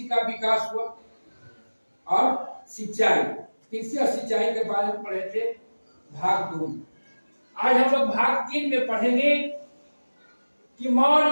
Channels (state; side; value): inverted; both; correlation -1.00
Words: का विकास हुआ और सिंचाई, कृषि और सिंचाई के बारे में पढ़े थे भाग 2। आज हम लोग भाग 3 में पढ़ेंगे कि मौर्य